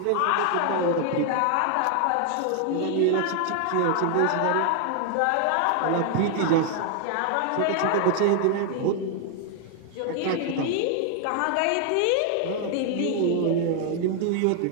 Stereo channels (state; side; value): different; both; correlation 0.00